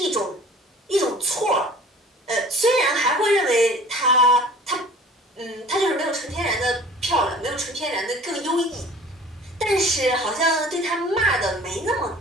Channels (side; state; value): both; normal; correlation 0.46